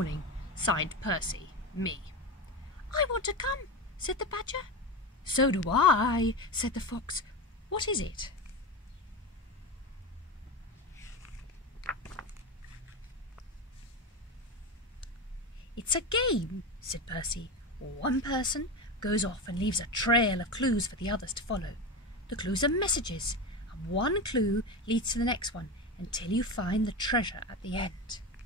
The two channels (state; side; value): normal; both; correlation 0.21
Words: Signed Percy, me. I want to come, said the badger. So do I, said the fox. What is it? It's a game, said Percy. One person goes off and leaves a trail of clues for the others to follow. The clues are messages, and one clue leads to the next one until you find the treasure at the end.